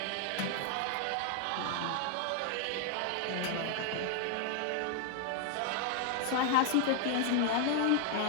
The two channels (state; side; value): different; both; correlation 0.00